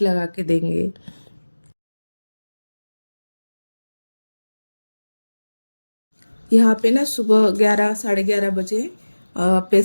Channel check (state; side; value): inverted; both; correlation -1.00